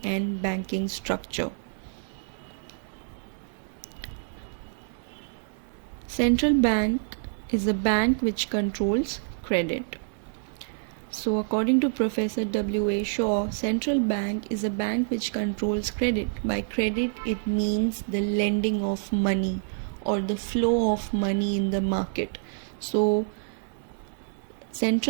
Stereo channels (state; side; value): silent; left; digital silence